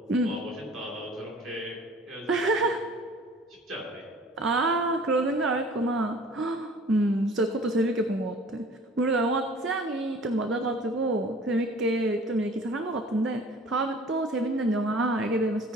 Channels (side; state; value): both; normal; correlation 0.48